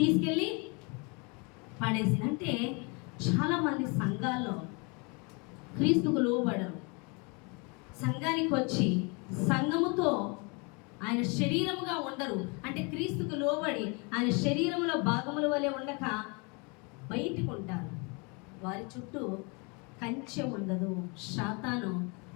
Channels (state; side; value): quieter; right; 31.5 dB